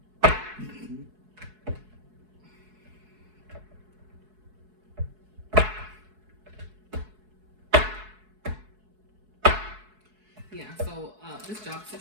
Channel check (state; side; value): late; left; 4.7 ms